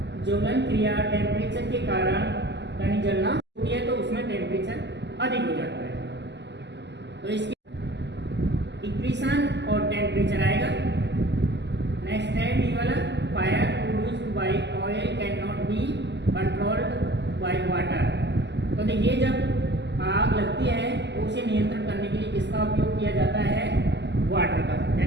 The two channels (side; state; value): left; late; 0.51 ms